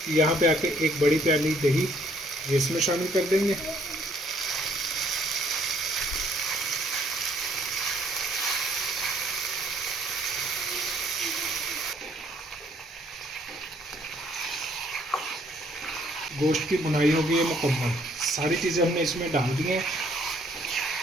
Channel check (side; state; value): both; normal; correlation 0.64